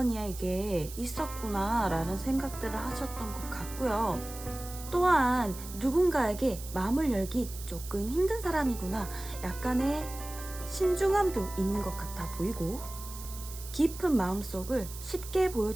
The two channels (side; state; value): right; noise; hiss, 13 dB below the sound